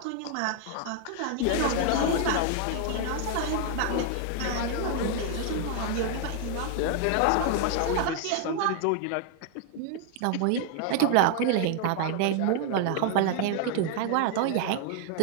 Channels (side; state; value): both; different; correlation 0.00